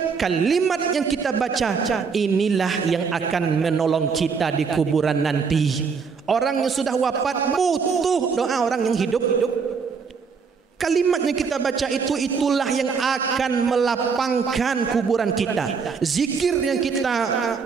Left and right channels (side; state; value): left; quieter; 5.6 dB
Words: kalimat yang kita baca inilah yang akan menolong kita di kuburan nanti. Orang yang sudah wafat butuh doa orang yang hidup. Kalimat yang kita baca itulah yang akan melapangkan kuburan kita. Zikir yang kita